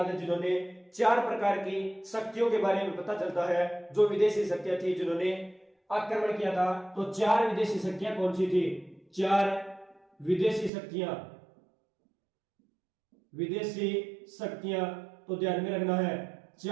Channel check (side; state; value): left; drops out; at 10.7 s